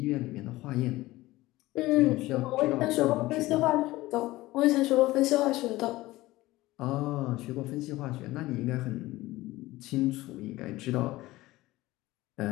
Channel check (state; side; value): quieter; right; 18.2 dB